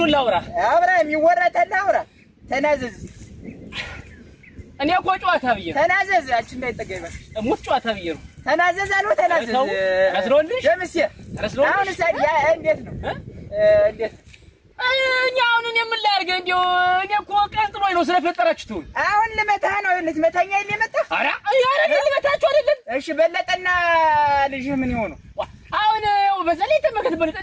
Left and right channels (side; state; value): both; identical; correlation 1.00